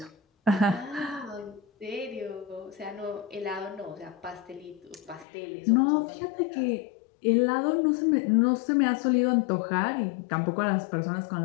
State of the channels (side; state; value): right; drops out; at 5.2 s